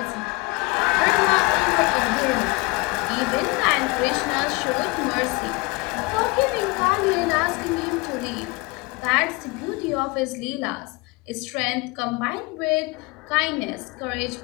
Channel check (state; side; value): quieter; right; 25.5 dB